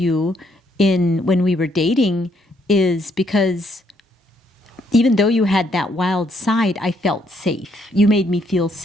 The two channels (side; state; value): both; normal; correlation 0.71